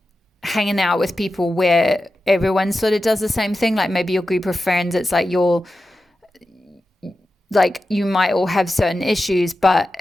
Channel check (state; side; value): normal; both; correlation 0.92